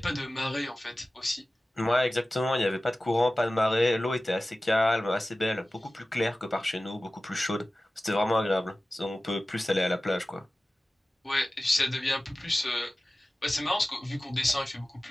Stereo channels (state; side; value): normal; both; correlation 0.96